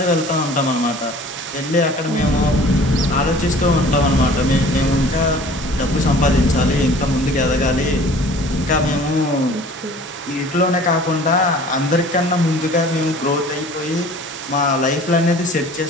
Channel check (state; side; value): normal; both; correlation 0.47